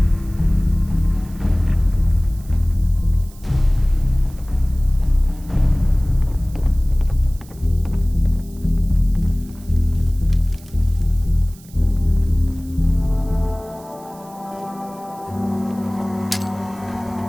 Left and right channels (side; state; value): right; noise; hiss, 24 dB below the sound